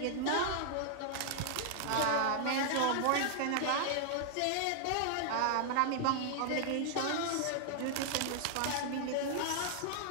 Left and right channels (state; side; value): different; both; correlation 0.00